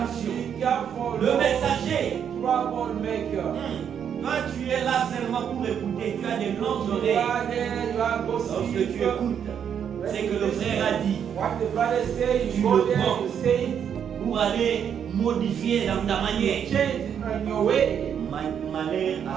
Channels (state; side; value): quieter; left; 8.3 dB